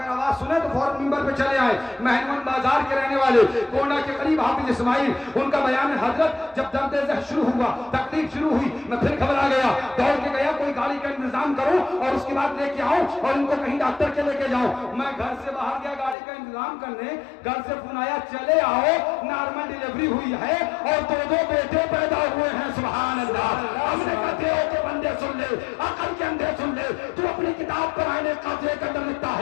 آواز سنے تو فوراً ممبر پہ چلے آئے۔ مہنون بازار کے رہنے والے کونا کے قریب حافظ اسماعیل، ان کا بیان ہے حضرت جب درد ذہ شروع ہوا، تکلیف شروع ہوئی، میں پھر گھبرا گیا، دوڑ کے گیا کوئی گاڑی کا انتظام کروں اور اس کے بعد لے کے آؤں اور ان کو کہیں ڈاکٹر کے لے کے جاؤں۔ میں گھر سے باہر گیا گاڑی کا انتظام کرنے، گھر سے فون آیا چلے آؤ نارمل ڈیلیوری ہوئی ہے اور 2 بیٹے پیدا ہوئے ہیں۔ سبحان اللہ۔ ہم نے کہتے ہو کہ بندے سن لے، عقل کے اندھے سن لے، تو اپنی کتاب پر آئین قاضی کے اندر لکھتا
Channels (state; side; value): drops out; right; at 16.2 s